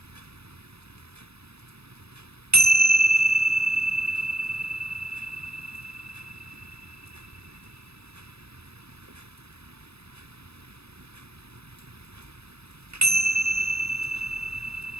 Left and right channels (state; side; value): late; left; 0.78 ms